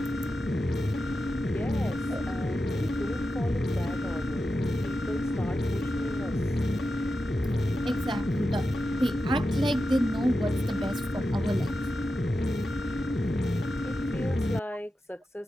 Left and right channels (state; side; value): normal; both; correlation 0.90